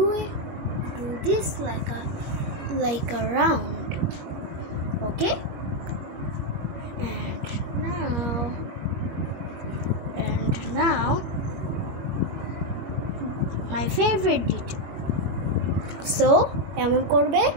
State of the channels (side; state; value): left; late; 21 ms